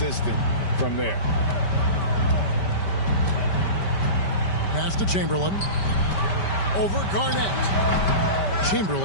from there. Pass to Chamberlain. Over Garnett.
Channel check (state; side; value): late; right; 5.1 ms